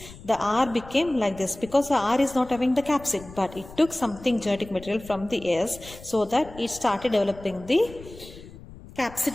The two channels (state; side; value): noise; left; rumble, 18 dB below the sound